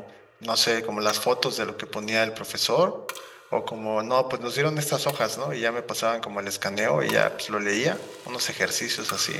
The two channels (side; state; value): both; identical; correlation 1.00